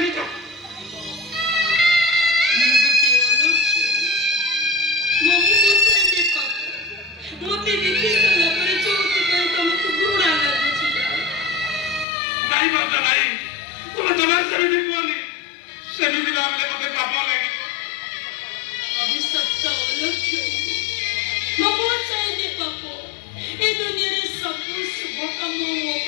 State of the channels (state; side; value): drops out; right; at 12.1 s